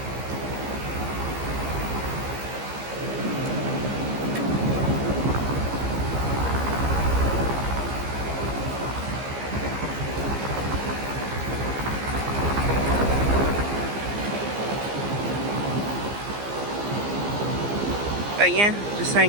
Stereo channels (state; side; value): late; left; 15 ms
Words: But yeah, just trying